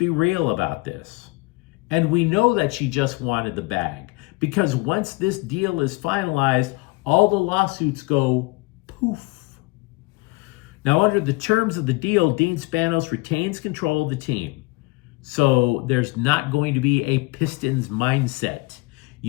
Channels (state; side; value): quieter; right; 23.9 dB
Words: real about this. And we know that she just wanted the bag, because once this deal is finalized, all the lawsuits go poof. Now, under the terms of the deal, Dean Spanos retains control of the team. So there's not going to be a Pistons mindset.